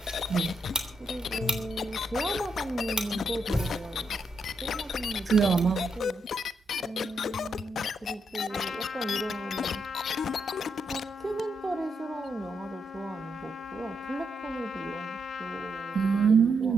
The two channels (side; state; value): both; normal; correlation 0.81